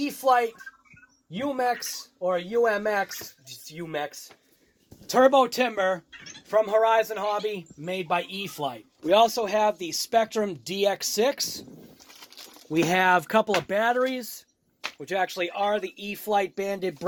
UMX, or UMX, just UMX, Turbo Timber from Horizon Hobby, made by E-Flite. We also have the Spektrum DX6. We have a couple of batteries, which actually are the E-Flite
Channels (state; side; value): identical; both; correlation 1.00